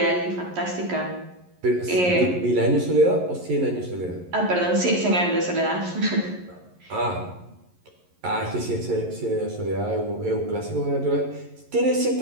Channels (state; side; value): late; left; 11 ms